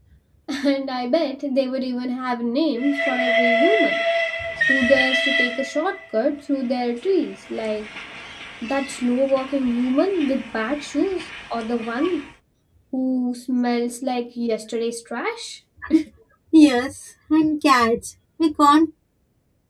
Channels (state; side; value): identical; both; correlation 1.00